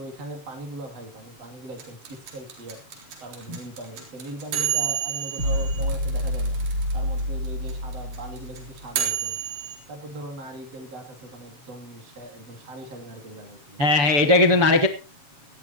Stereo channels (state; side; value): late; left; 7.3 ms